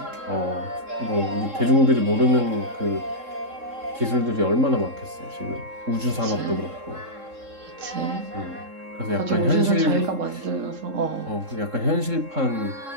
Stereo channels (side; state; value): left; late; 3.7 ms